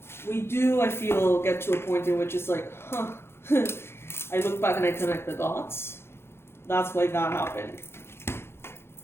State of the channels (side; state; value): right; late; 0.12 ms